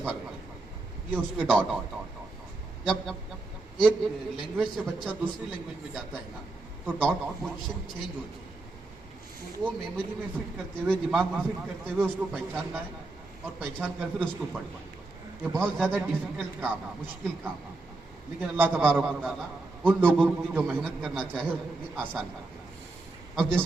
ये उसके डॉट। जब एक लैंग्वेज से बच्चा दूसरी लैंग्वेज में जाता है ना तो डॉट की पोजीशन चेंज होती है। तो वो मेमोरी में फिट करते हुए, दिमाग में फिट करते हुए उसको पहचानना है और पहचान कर फिर उसको पढ़ना है। ये बहुत ज़्यादा डिफिकल्ट काम है, मुश्किल काम है, लेकिन अल्लाह तबारक व तआला उन लोगों की जो मेहनत करना चाहे उसके लिए आसान कर दिया। अब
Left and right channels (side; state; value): left; quieter; 3.2 dB